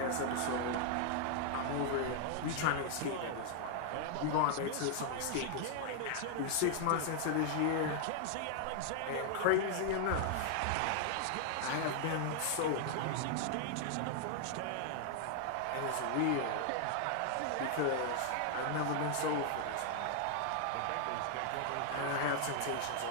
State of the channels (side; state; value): both; different; correlation 0.00